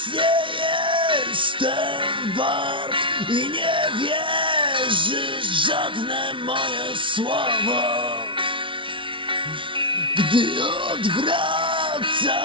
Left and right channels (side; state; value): left; late; 0.25 ms